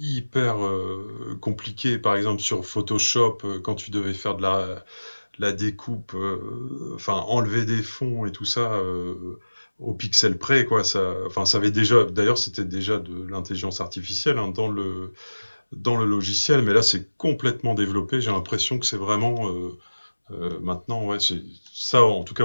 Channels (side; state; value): both; inverted; correlation -1.00